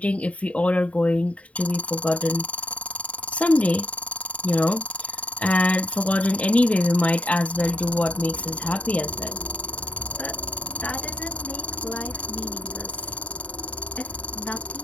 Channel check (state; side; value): late; right; 0.066 ms